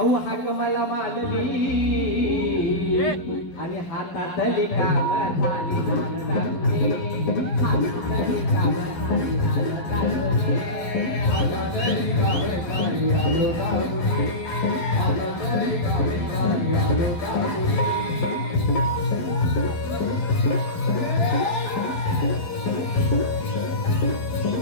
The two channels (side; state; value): right; late; 11 ms